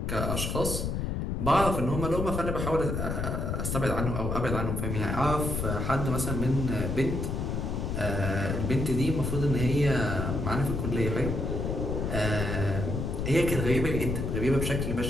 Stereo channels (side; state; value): left; noise; rumble, 1 dB below the sound